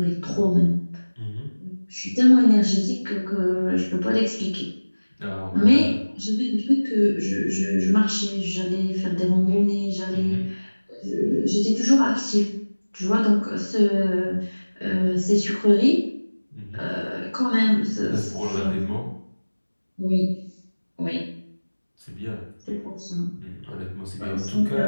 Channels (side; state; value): both; inverted; correlation -1.00